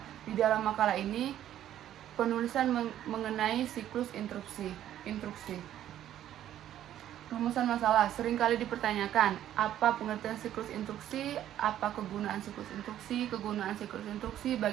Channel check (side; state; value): left; quieter; 11.7 dB